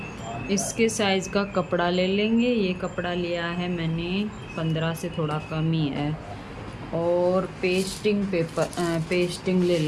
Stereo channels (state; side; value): identical; both; correlation 1.00